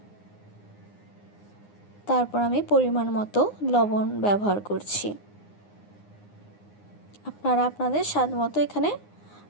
তারপর আমি পরিমাণ মতো লবণ ব্যবহার করছি। আপনারা আপনাদের স্বাদ মতো এখানে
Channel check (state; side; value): late; right; 9.7 ms